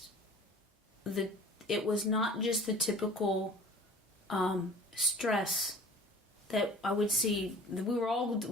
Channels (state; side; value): normal; both; correlation 0.45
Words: the typical stress that I would see. We were all